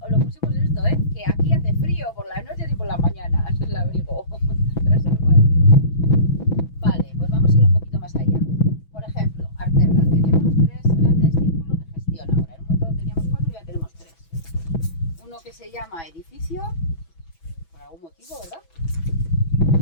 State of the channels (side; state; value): right; late; 6.1 ms